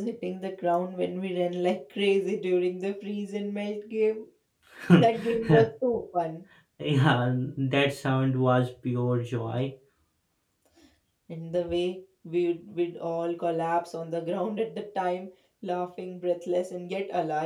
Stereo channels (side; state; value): both; identical; correlation 1.00